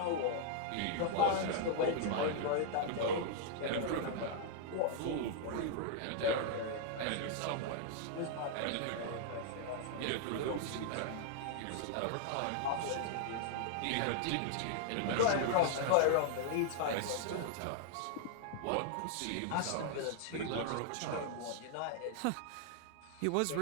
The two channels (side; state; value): both; different; correlation -0.01